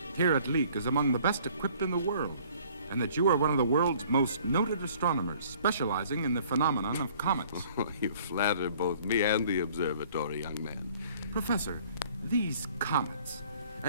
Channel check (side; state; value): both; inverted; correlation -0.56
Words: here at Leek is among the best equipped in the world, and that you are one of the world's most noted astronomers, specializing in the phenomenon of comets. You flatter both me and the observatory, young man. Professor, these comets...